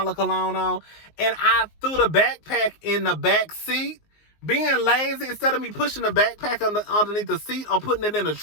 cologne on. And I threw the backpack in the back seat. Being lazy, instead of me pushing the backpack underneath the seat or putting it in the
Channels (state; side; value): late; right; 19 ms